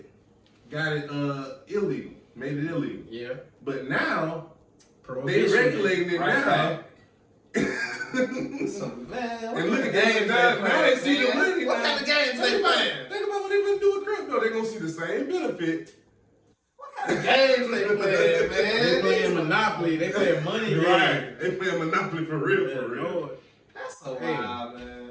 got it illegal, made it illegal. Yeah. But now Prohibition. they regulating it now. So, man, And look at games now they see the money. What kind of games they playing? Think about what they gonna do with crypto. They're gonna see the same benefit. What kind of games they playing, man? They playing Monopoly. They playing money. Right. They playing Monopoly for real, Yeah, for real. Lord. That's so Hey. wild,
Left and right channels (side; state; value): both; identical; correlation 1.00